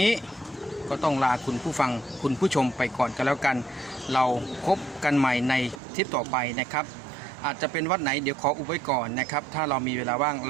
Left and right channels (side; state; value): left; drops out; at 5.8 s